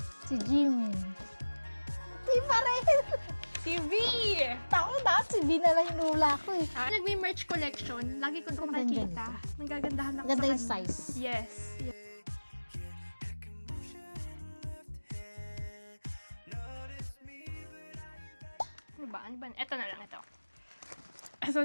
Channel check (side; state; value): both; inverted; correlation -1.00